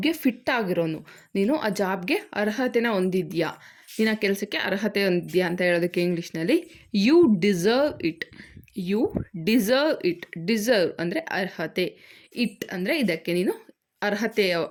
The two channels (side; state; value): both; identical; correlation 1.00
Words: ಫಿಟ್ ಆಗಿರೋನು. ನೀನು ಆ ಜಾಬ್ಗೆ ಅರ್ಹತೆನ ಹೊಂದಿದ್ಯಾ, ನೀನು ಆ ಕೆಲಸಕ್ಕೆ ಅರ್ಹತೆ ಹೊಂದಿದ್ಯಾ ಅಂತ ಹೇಳೋದಕ್ಕೆ ಇಂಗ್ಲೀಷ್ನಲ್ಲಿ you deserve it. You deserve it. Deserve ಅಂದರೆ ಅರ್ಹತೆ, ಇಟ್ ಅಂದರೆ ಇದಕ್ಕೆ ನೀನು ಅರ್ಹತೆ